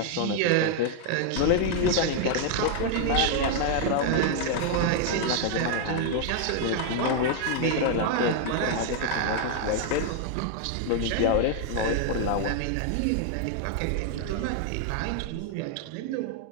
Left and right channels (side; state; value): both; different; correlation 0.00